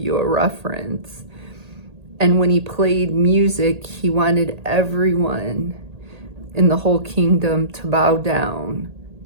a reference. And when he played music, he wanted everyone in the whole kingdom to bow down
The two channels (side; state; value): left; late; 1.8 ms